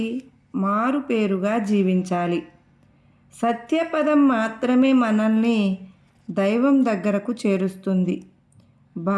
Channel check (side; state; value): both; identical; correlation 1.00